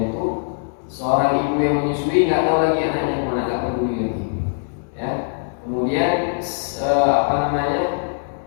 itu, seorang ibu yang menyusui nggak tahu lagi anaknya kemana, nggak peduli lagi. Ya, kemudian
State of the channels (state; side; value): silent; right; digital silence